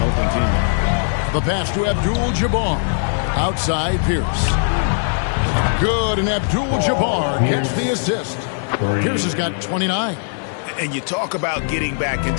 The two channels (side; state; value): right; silent; digital silence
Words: open teammate. The pass to Abdul-Jabbar. Outside Pierce. Good, and Abdul-Jabbar gets the assist. Pierce has got 29. And you talk about getting back